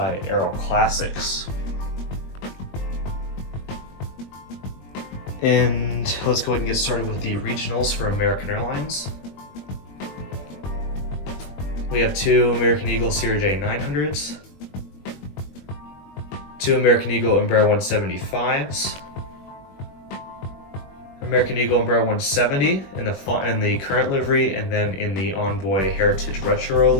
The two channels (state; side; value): late; right; 21 ms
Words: Aero Classics. And let's go ahead and get started with the regionals for American Airlines. We have two American Eagle CRJ 900s, two American Eagle Embraer 175s, American Eagle Embraer 170 in the current livery, and then in the Envoy Heritage Retro